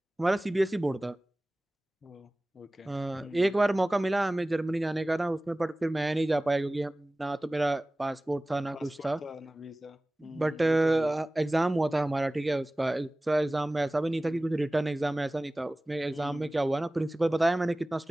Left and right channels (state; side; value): normal; both; correlation 0.98